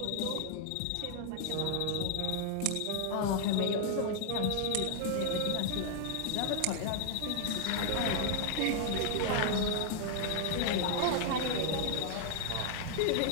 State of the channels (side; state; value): both; different; correlation 0.00